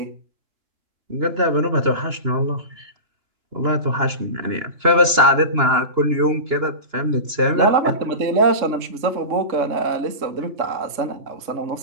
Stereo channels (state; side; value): late; left; 2.9 ms